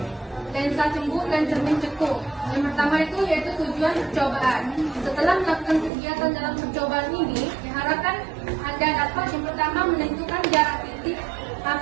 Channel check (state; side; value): drops out; left; at 5.9 s